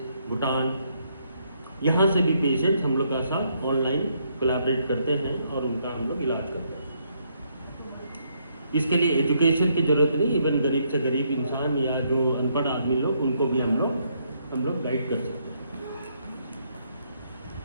भूटान, यहाँ से भी पेशेंट्स हम लोग का साथ ऑनलाइन कोलैबोरेट करते हैं और उनका हम लोग इलाज करते हैं। इसके लिए एजुकेशन की ज़रूरत नहीं, इवन गरीब से गरीब इंसान या जो अनपढ़ आदमी लोग, उनको भी हम लोग गाइड कर सकते हैं।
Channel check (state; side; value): inverted; both; correlation -0.73